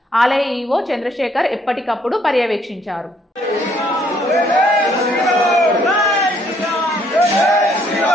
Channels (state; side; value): normal; both; correlation 0.66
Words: ఆలయ ఈవో చంద్రశేఖర్ ఎప్పటికప్పుడు పర్యవేక్షించారు.